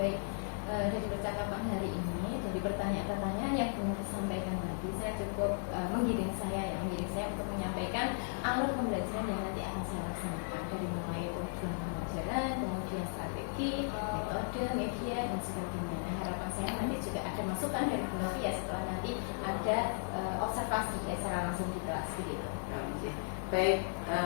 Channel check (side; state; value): right; silent; 54 dB below the other